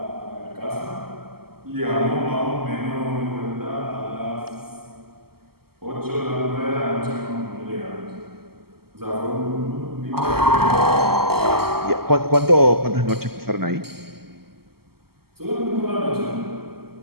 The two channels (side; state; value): left; late; 0.95 ms